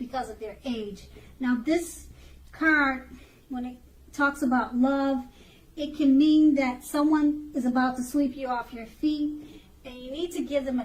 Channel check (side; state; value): both; identical; correlation 1.00